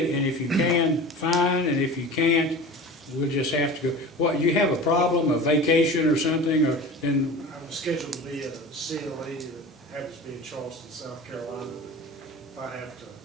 and if you can, fine, and if you can't, we'll just have to go. What, you have a problem, a vacation or something, or then, I was scheduled to be at a CLE that happens to be in Charleston, South Carolina. If I have to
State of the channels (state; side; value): normal; both; correlation 0.35